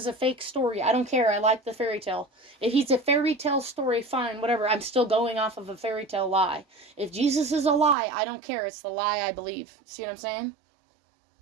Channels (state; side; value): drops out; left; at 8.0 s